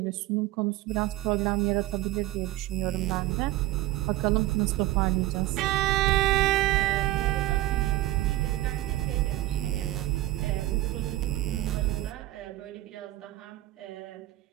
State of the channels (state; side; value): quieter; left; 16.4 dB